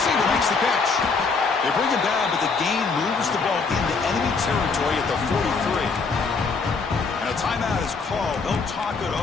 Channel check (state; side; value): quieter; right; 4.6 dB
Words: makes the catch. They bring him down, but the gain moves the ball into enemy territory at the 43. And a timeout is called. They'll talk it